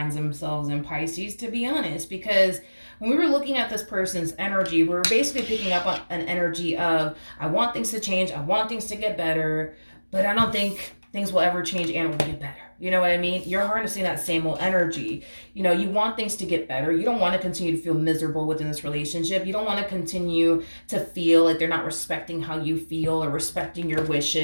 themselves in, Pisces, to be honest, because when we were looking at this person's energy, we were basically picking up on an energy of, I want things to change, I want things to get better, but I don't think things will ever change and will get better. You know what I mean? You're harnessing that same old energy. You know, you want things to get better. You don't want to continue to feel miserable within this relationship. You don't want to continue to feel like they're not respecting how you feel or respecting your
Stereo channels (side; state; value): both; inverted; correlation -1.00